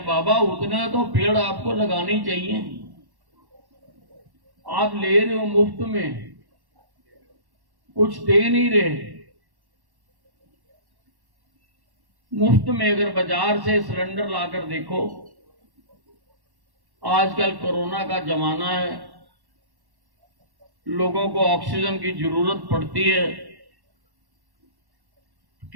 बाबा, उतना तो पेड़ आपको लगानी चाहिए। आप ले रहे हो मुफ्त में, कुछ दे नहीं रहे। मुफ्त में अगर बाजार से सिलेंडर लाकर देखो, आजकल कोरोना का जमाना है, लोगों को ऑक्सीजन की जरूरत पड़ती है,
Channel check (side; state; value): left; late; 1.1 ms